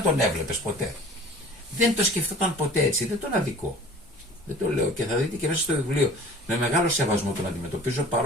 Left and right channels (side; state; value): both; normal; correlation 0.45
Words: τον έβλεπες ποτέ. Δεν το σκεφτόταν ποτέ έτσι, δεν τον αδικό. Δεν το λέω, και θα δείτε και μέσα στο βιβλίο. Με μεγάλο σεβασμό τον αντιμετωπίζω,